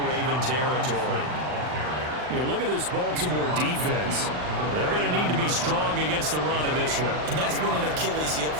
Raven territory. You look at this Baltimore defense. They're going to need to be strong against the run in this one. And that's been an Achilles heel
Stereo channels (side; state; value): left; late; 39 ms